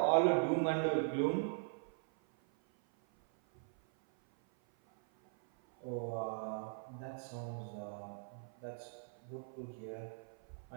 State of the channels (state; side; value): silent; left; 51 dB below the other